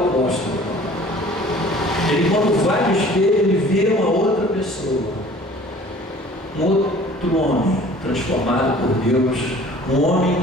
Ele, quando vai no espelho, ele vê uma outra pessoa, um outro homem transformado por Deus, um homem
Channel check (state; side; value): normal; both; correlation 0.49